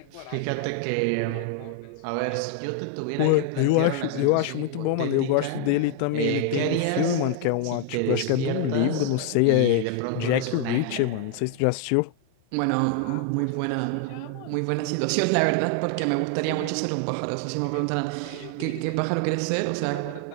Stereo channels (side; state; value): both; different; correlation 0.00